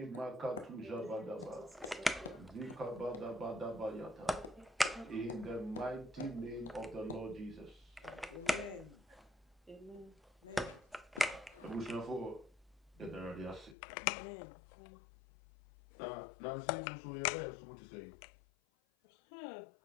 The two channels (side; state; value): right; drops out; at 13.8 s